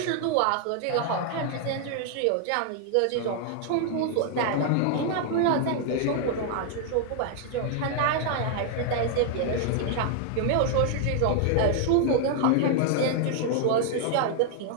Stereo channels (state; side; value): different; both; correlation 0.00